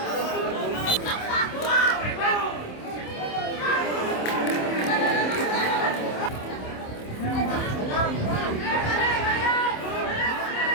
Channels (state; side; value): late; right; 27 ms